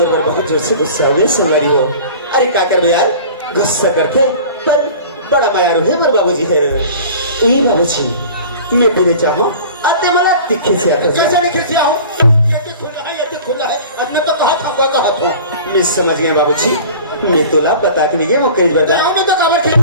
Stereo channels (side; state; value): both; inverted; correlation -0.42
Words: पर बहुत जोर से गुस्सा हुए संगारी हो अरे क्या कर यार गुस्सा करते पर बड़ा मायारू है मोर बाबूजी है ये बाबूजी मैं तेरे चाहूं अते मला दिखे से आता कैसे दिखे से आऊं ये खुला है अब मैं तो कहा था मैं समझ गया बाबूजी मैं तोला बता के नहीं वो केज बजा मैं तो खबर थे